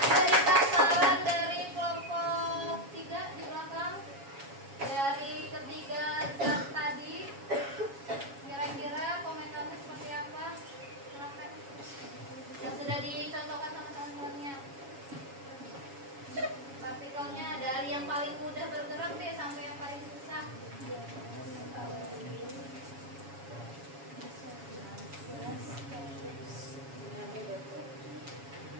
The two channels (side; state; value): left; late; 7.2 ms